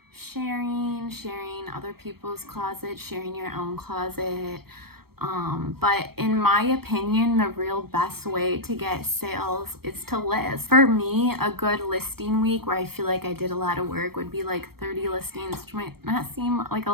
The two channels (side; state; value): left; late; 0.95 ms